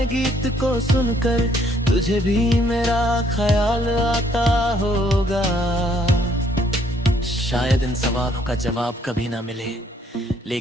गीत को सुनकर तुझे भी मेरा ख्याल आता होगा। शायद इन सवालों का जवाब कभी ना मिले,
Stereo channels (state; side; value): normal; both; correlation 0.66